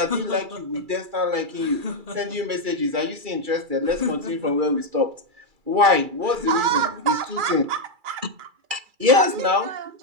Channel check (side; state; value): left; late; 2.3 ms